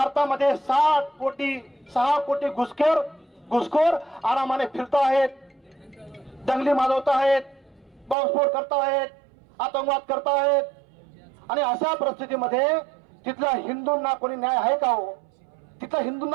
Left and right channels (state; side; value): drops out; left; at 8.2 s